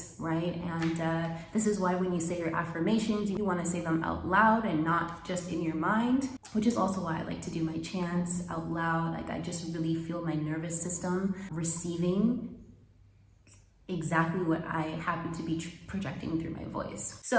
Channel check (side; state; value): both; identical; correlation 1.00